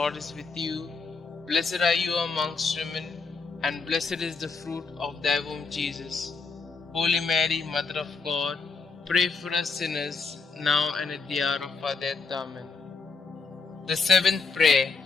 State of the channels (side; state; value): right; quieter; 4.5 dB